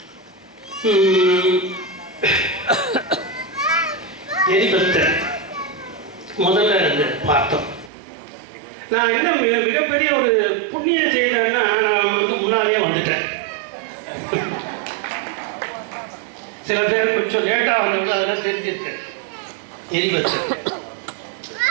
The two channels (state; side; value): drops out; left; at 7.9 s